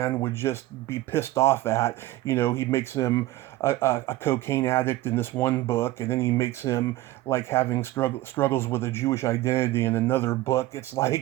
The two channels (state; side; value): quieter; left; 16.7 dB